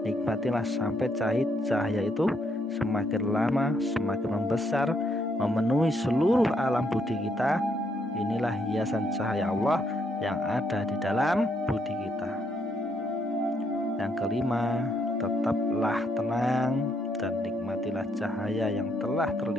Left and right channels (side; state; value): both; normal; correlation 0.74